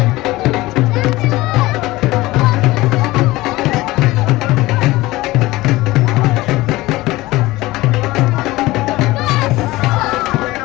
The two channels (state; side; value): quieter; right; 19.1 dB